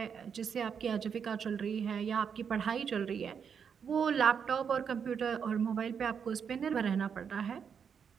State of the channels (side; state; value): left; quieter; 7.0 dB